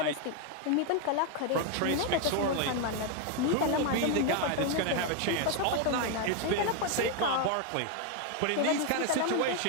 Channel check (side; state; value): both; different; correlation 0.01